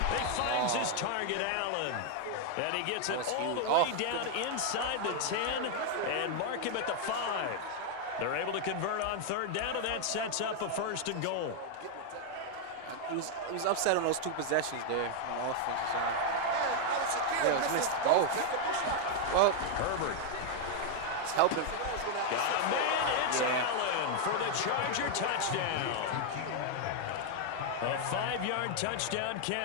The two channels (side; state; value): both; different; correlation 0.00